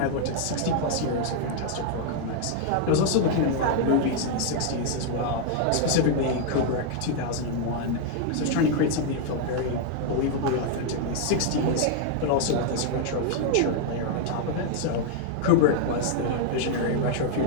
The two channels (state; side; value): different; both; correlation 0.00